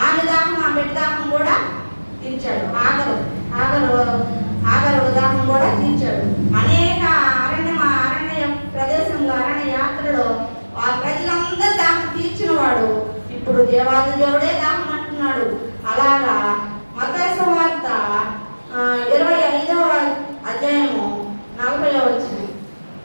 ఆమె దాహం ఆ బిడ్డ దాహం కూడా తీర్చాడు. ఆగరు దాహం కూడా తీర్చాడు. అనేక అరణ్య ప్రదేశంలో అరణ్య యాత్రలో ఆ ప్రజలందరూ దాహం తీర్చిన వాడు ఇప్పుడు దేవాది దేవుడే దాహం అంటున్నాడు. అలాగా మత్తయి సువార్త 25:40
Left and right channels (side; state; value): both; inverted; correlation -1.00